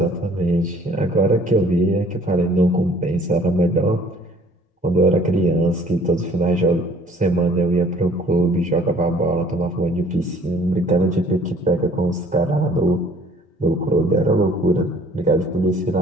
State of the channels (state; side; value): normal; both; correlation 0.55